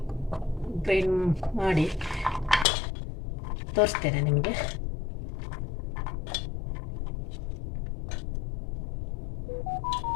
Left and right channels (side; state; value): right; drops out; at 2.7 s